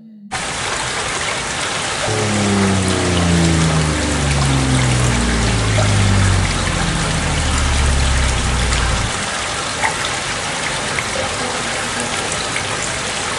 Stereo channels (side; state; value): both; identical; correlation 1.00